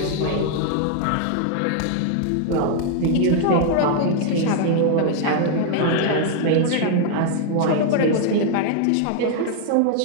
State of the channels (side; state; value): both; different; correlation 0.00